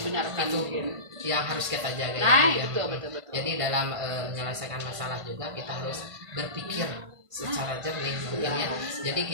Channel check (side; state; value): left; late; 1.5 ms